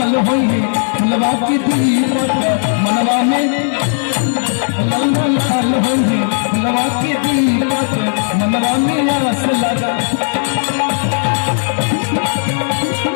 हुई है फुलवा की दीपक मनवा में ललना लाल हुई है फुलवा की दीपक मनवा में आस लगा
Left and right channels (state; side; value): silent; right; digital silence